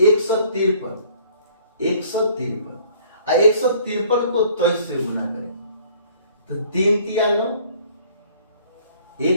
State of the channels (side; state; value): both; inverted; correlation -0.56